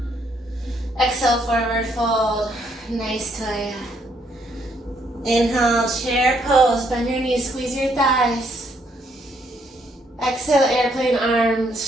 Exhale, forward fold. Nice toya. Inhale, chair pose. Bend your knees, squeeze your thighs. Exhale, airplane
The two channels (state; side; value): normal; both; correlation 0.71